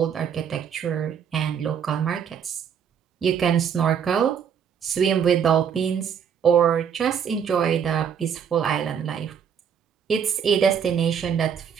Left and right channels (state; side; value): quieter; left; 7.7 dB